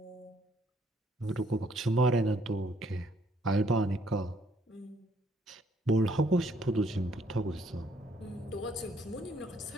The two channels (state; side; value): normal; both; correlation 0.67